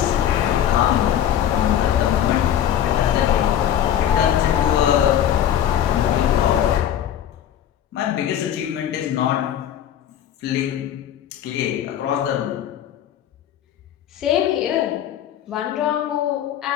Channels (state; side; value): quieter; right; 10.5 dB